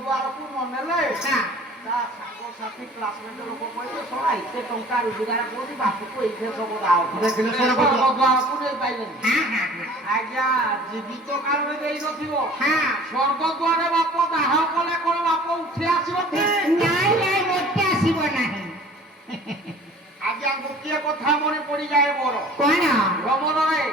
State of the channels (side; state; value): both; normal; correlation 0.47